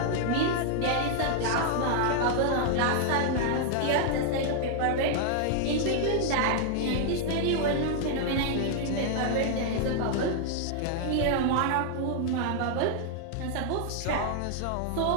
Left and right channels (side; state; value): both; different; correlation 0.00